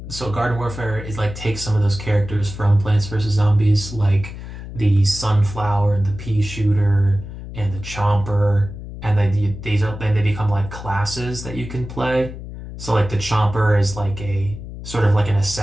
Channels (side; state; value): left; noise; hum, 11 dB below the sound